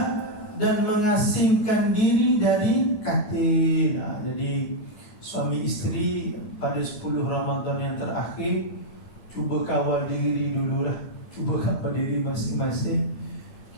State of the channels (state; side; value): late; right; 9.5 ms